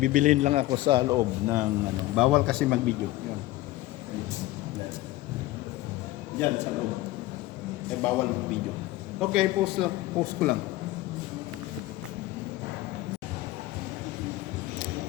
lang ako sa loob ng bawal kasi mag-video. Yan. Diyan sa loob. Bawal mag-video. Okay, post ko lang.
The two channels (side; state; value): right; quieter; 17.1 dB